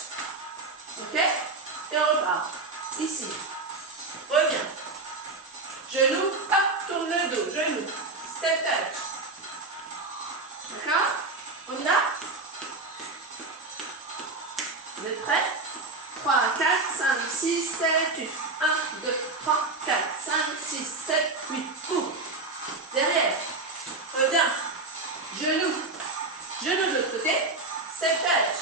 Ok? Et on repart. Ici. Reviens. Genou, hop, tourne le dos. Genou. Step touch. D'accord? On y va? Vous êtes prêts? 3, 4, 5, 6, 7, 8. 1, 2, 3, 4, 5, 6, 7, 8. Ouvre. Derrière. Reviens. Genou. Genou de l'autre côté. Step touch.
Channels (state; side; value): quieter; left; 3.4 dB